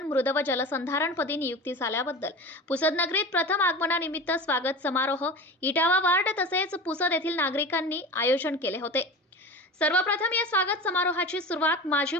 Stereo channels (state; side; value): normal; both; correlation 0.32